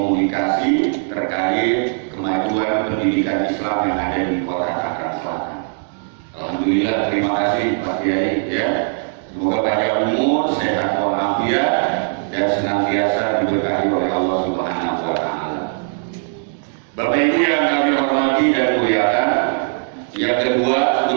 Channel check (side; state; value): left; silent; digital silence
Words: terkait kemajuan pendidikan Islam yang ada di Kota Tangerang Selatan. Alhamdulillah, terima kasih Pak Kiai ya. Semoga panjang umur, sehat walafiat, dan senantiasa diberkahi oleh Allah Subhanahu wa Ta'ala. Bapak Ibu yang kami hormati dan muliakan, yang kedua